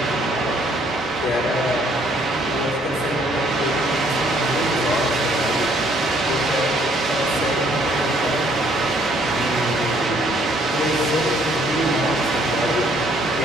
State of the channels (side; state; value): both; normal; correlation 0.64